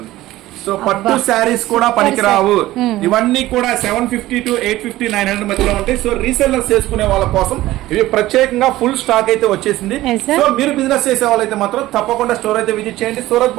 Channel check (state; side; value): quieter; left; 16.3 dB